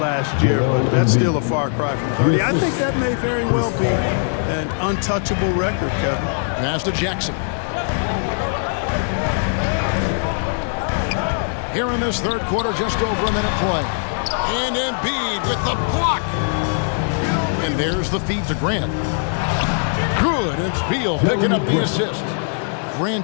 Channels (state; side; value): silent; right; 65 dB below the other